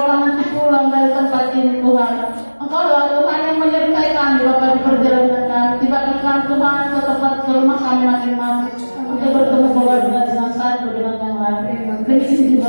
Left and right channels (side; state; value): both; inverted; correlation -1.00